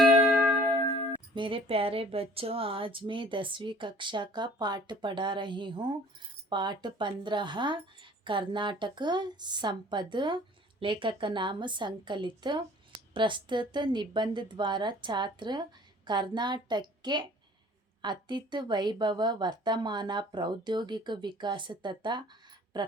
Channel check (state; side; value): normal; both; correlation 0.51